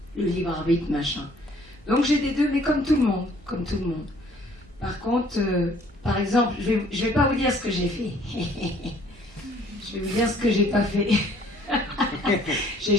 le libre arbitre, machin. Donc j'ai des deux, mais comme tout le monde, comme tout le monde. Par contre, par exemple, je vais pas vous dire ce que j'ai fait. Je vais vous dire ce que j'ai pas fait. J'ai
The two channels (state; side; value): normal; both; correlation 0.59